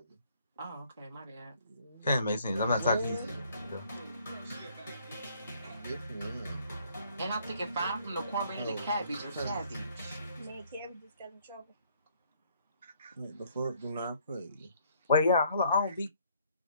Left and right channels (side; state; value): both; inverted; correlation -0.64